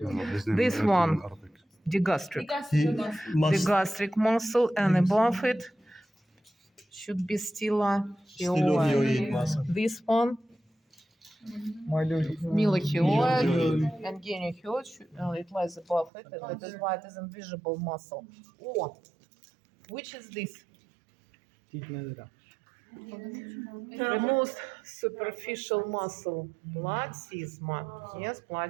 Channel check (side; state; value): left; drops out; at 16.1 s